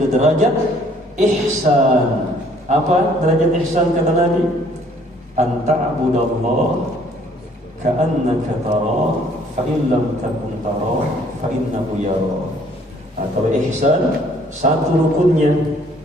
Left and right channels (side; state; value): both; normal; correlation 0.60